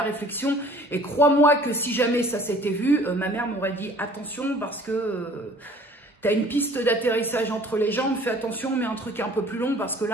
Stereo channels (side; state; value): both; normal; correlation 0.51